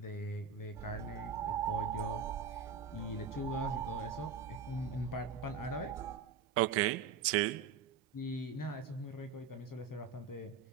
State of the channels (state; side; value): quieter; left; 5.9 dB